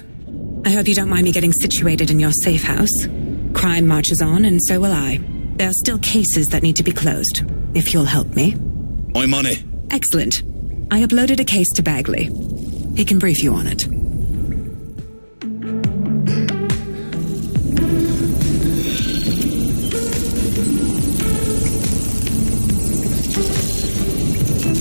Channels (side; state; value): both; inverted; correlation -1.00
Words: I hope you don't mind me getting situated in your safe house. Crime marches on, and so will I. There are still cases that need to be closed, if you'll help me. I'm on it. Excellent. I uploaded a case to Bagley. He can brief you on it.